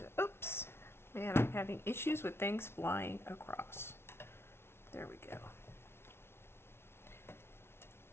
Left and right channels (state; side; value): late; right; 0.12 ms